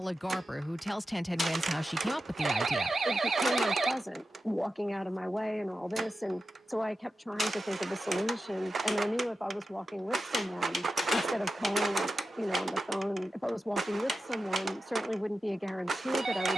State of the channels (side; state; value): both; normal; correlation 0.91